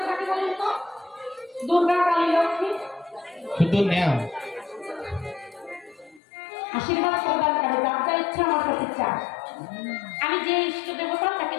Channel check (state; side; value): drops out; right; at 6.2 s